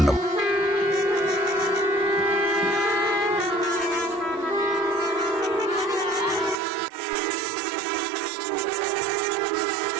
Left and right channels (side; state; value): left; drops out; at 6.6 s